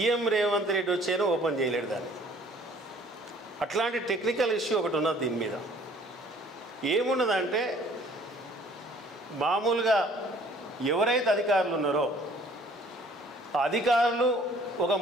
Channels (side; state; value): both; normal; correlation 0.56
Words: రేవంత్ రెడ్డి వచ్చేనో ఓపెన్ చేయలేడు దాన్ని. అట్లాంటి టెక్నికల్ ఇష్యూ ఒకటి ఉన్నది. దీని మీద ఏమున్నదంటే మామూలుగా ఎవరైతే అధికారులు ఉన్నారో ఆ అధికారులు ఒక